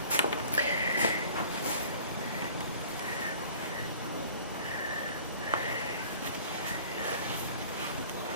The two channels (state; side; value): inverted; both; correlation -0.48